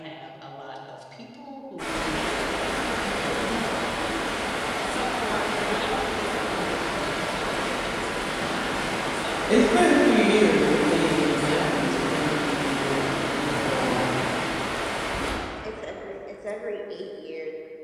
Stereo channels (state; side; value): identical; both; correlation 1.00